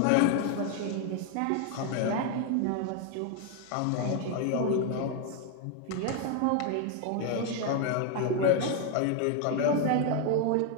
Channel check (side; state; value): both; different; correlation 0.01